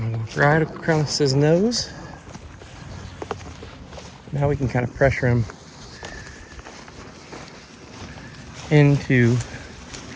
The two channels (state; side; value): identical; both; correlation 1.00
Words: Right across his nose. Now we can kind of pressure him into